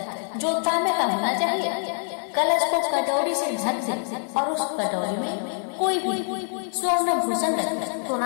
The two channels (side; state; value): right; silent; 55 dB below the other